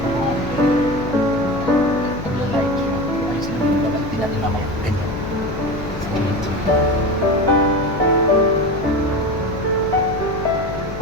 Natin mamaya ganyan.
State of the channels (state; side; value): noise; left; hum, 9 dB below the sound